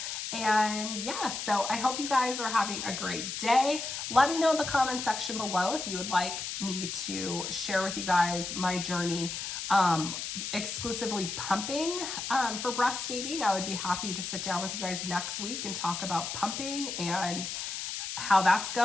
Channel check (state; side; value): noise; left; hiss, 5 dB below the sound